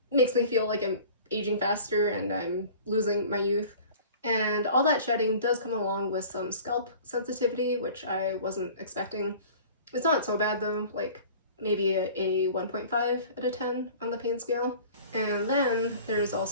makes me feel like I'm aging faster and I'm losing my youth. And all that shedding does come along with some scalp sensitivity, which I wasn't expecting. It's not so bad though, like maybe a 1.5 out of 10 on the pain scale. And then there's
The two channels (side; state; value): both; inverted; correlation -0.45